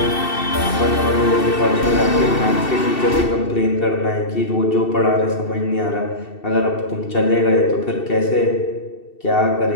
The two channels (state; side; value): late; right; 2.7 ms